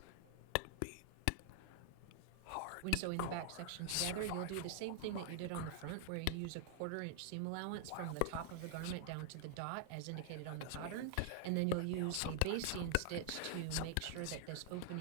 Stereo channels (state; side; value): different; both; correlation -0.01